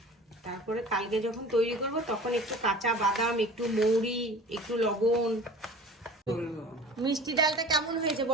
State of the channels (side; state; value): both; normal; correlation 0.41